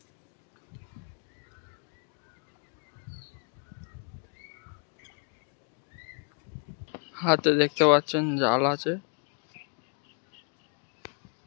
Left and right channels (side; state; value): right; quieter; 39.9 dB